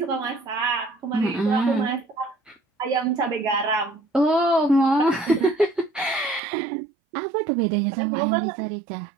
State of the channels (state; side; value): drops out; left; at 6.4 s